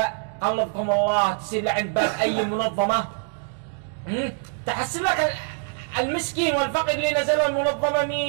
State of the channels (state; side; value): silent; left; 62 dB below the other